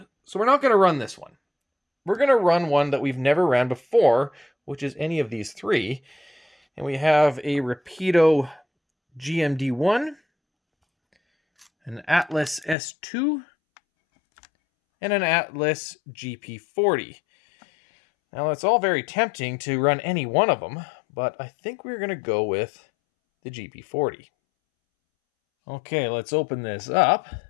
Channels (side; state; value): right; drops out; at 12.8 s